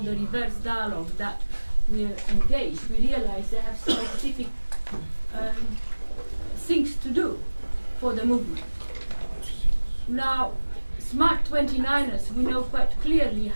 reverse dialogue that we're engaged, we realize they have specific things to do for the movement. Now, Smart 29ers, we know quite clearly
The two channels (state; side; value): inverted; both; correlation -1.00